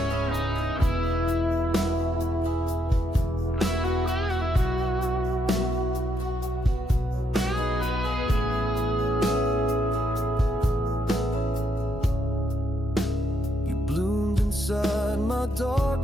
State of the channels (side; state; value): both; normal; correlation 0.77